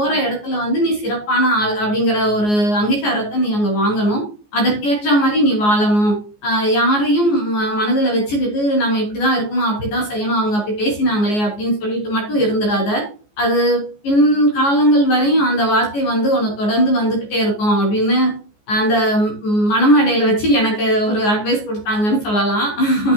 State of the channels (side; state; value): right; late; 14 ms